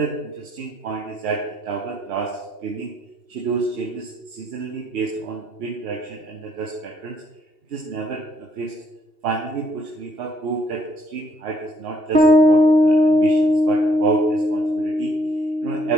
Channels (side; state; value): left; late; 2.7 ms